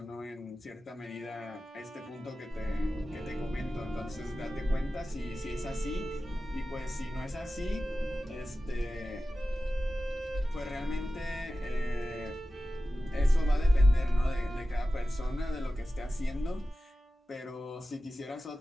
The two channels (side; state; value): both; normal; correlation 0.94